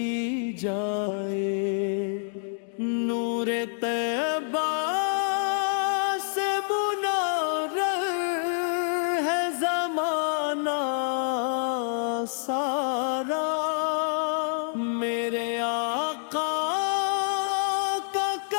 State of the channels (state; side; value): silent; right; digital silence